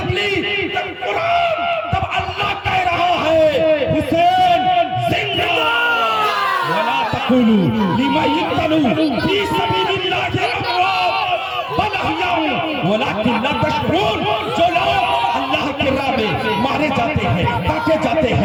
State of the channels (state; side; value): identical; both; correlation 1.00